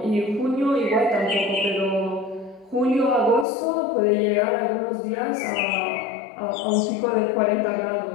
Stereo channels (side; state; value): right; drops out; at 3.5 s